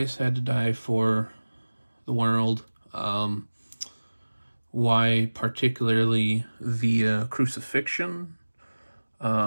had to die for the world, why particularly via crucifixion,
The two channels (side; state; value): both; inverted; correlation -1.00